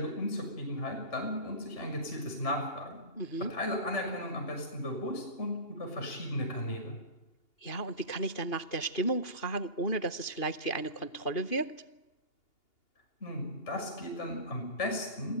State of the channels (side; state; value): right; late; 2.8 ms